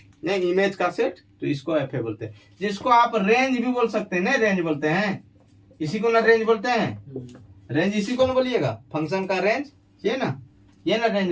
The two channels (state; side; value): identical; both; correlation 1.00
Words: नहीं इमेज का सेट, तो इसको FA बोलते हैं। जिसको आप रेंज भी बोल सकते हैं, नहीं रेंज बोलते हैं, इसी को ना रेंज बोलते हैं। रेंज इसी को ना बोलिएगा, फंक्शन का रेंज, ये ना